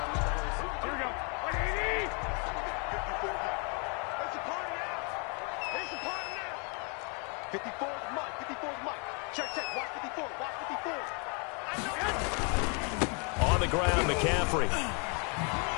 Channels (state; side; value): quieter; right; 35.8 dB